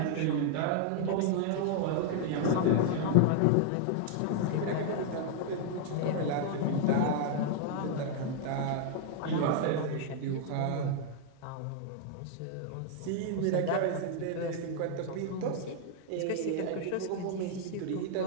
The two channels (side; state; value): both; different; correlation 0.00